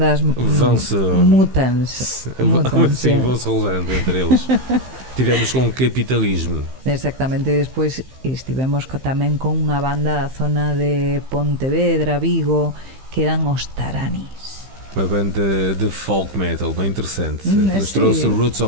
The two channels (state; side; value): late; left; 15 ms